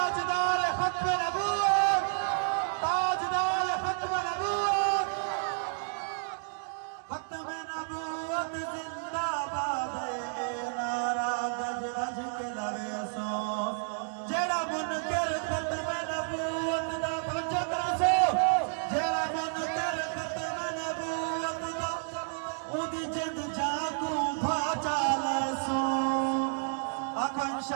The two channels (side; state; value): left; silent; digital silence